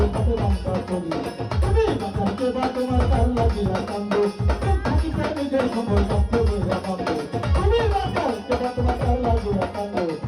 হাতে বান্ধা করি তুমি বাঁচাতে বা তোমার তার লাগিয়া কান্দো থাকিতে নিজের সময় থাকতে বইয়া কান্দো তুমি বাঁচাতে বা তোমার তার লাগিয়া কান্দো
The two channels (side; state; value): both; identical; correlation 1.00